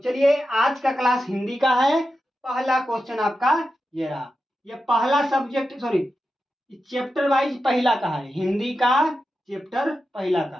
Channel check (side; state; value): both; normal; correlation 0.90